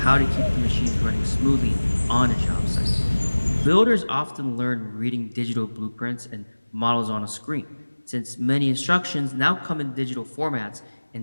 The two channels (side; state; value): both; inverted; correlation -1.00